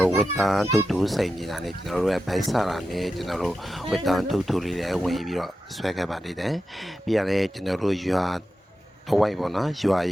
ော်ဝတ်တန်းတူတူဆိုင်နေတာနဲ့ကျွန်တော်တို့ရဲ့ဘိုက်ဆာနဲ့ကျွန်တော်တို့ဝတ်တန်းတူတူလေးလည်းဝင်ပြီးတော့ဆွဲခဲ့ပါသေးတယ်ပြီးရတယ်ကျွန်တော်တို့ရွာတဝိုက်ပေါ့နော်ရွာ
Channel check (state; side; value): normal; both; correlation 0.91